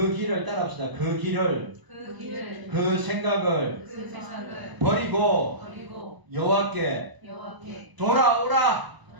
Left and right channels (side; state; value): left; late; 1.0 ms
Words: 길을 따라합시다. 그 길을 그 생각을 버리고 여호와께